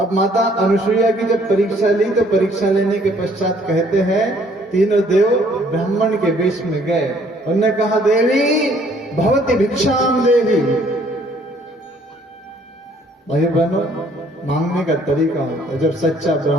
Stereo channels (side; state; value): both; normal; correlation 0.61